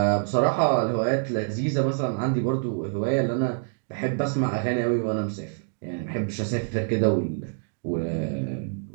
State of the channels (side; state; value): left; silent; digital silence